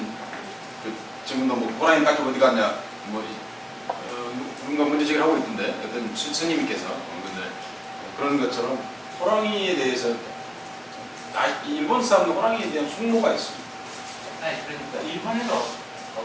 그 지금도 뭐 호랑이 가죽 어디 갔냐 뭐 누군가 문제제기를 하고 있던데 어떤 스님께서 근데 그런 것처럼 호랑이에 대해서 일본 사람도 호랑이에 대한 숙모가 있습니다. 아니 그러니까 일본에도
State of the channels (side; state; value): both; identical; correlation 1.00